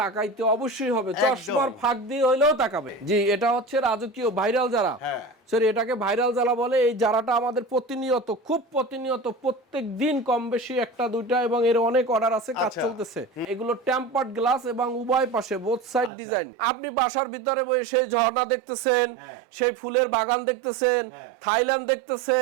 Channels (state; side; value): drops out; left; at 16.1 s